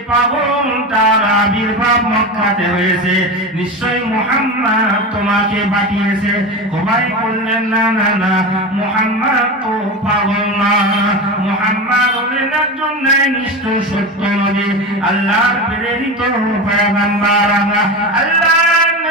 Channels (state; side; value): normal; both; correlation 0.23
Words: পাগল তার আবির্ভাব মক্কাতে হয়েছে, নিশ্চয়ই মুহাম্মদ তোমাকে পাঠিয়েছে। খুবাইব বললেন, না না না, মুহাম্মদ তো পাগল না, মুহাম্মদ হলেন একজন ন্যায়নিষ্ঠ সত্য নবী, আল্লাহর প্রেরিত পয়গম্বর। আল্লাহর